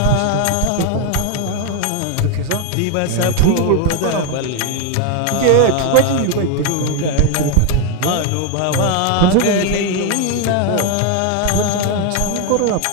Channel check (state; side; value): different; both; correlation 0.01